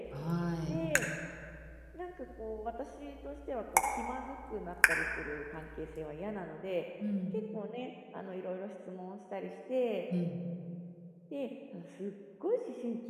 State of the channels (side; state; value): both; identical; correlation 1.00